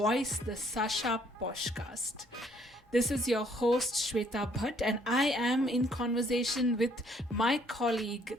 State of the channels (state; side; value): normal; both; correlation 0.64